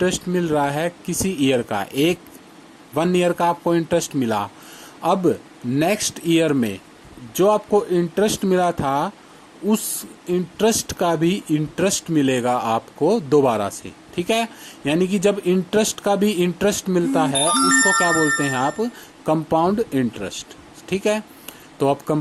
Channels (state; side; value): identical; both; correlation 1.00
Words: मिल रहा है किसी ईयर का, 1 ईयर का आपको इंटरेस्ट मिला, अब नेक्स्ट ईयर में जो आपको इंटरेस्ट मिला था उस इंटरेस्ट का भी इंटरेस्ट मिलेगा आपको दोबारा से। ठीक है, यानी कि जब इंटरेस्ट का भी इंटरेस्ट मिलता है उसको क्या बोलते हैं आप, कंपाउंड इंटरेस्ट। ठीक है, तो आप